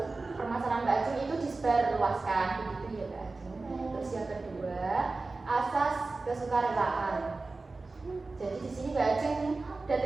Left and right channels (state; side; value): quieter; left; 3.6 dB